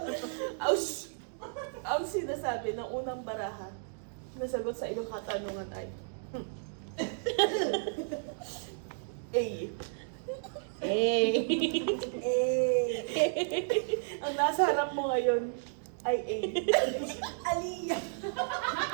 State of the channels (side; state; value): left; silent; digital silence